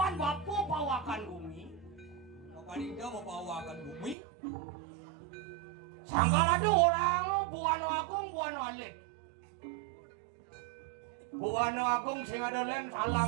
bapu pawakan bumi. Mapan Indo mau bawakan bumi. Sangkal ada orang Buano Agung Buano Alit. Buano Agung sing ada len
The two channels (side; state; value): left; drops out; at 4.2 s